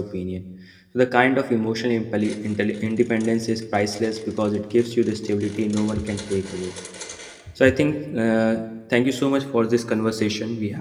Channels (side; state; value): both; identical; correlation 1.00